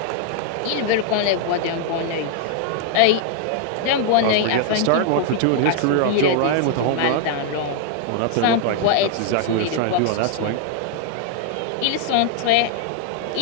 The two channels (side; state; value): both; different; correlation 0.00